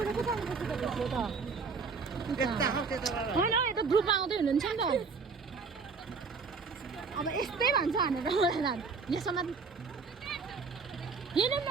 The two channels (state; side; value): quieter; left; 4.8 dB